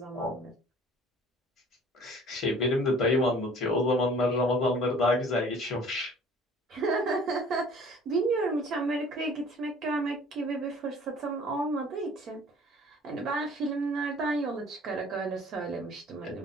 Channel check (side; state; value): both; normal; correlation 0.50